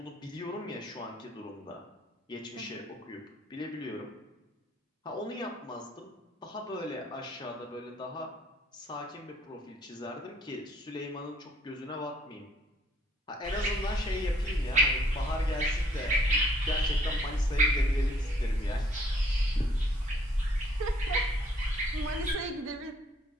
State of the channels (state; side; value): normal; both; correlation 0.63